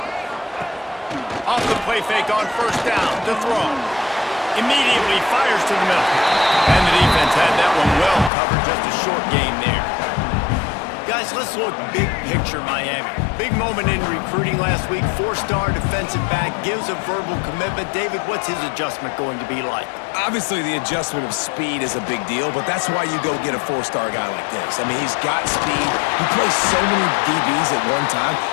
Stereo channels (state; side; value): drops out; right; at 8.3 s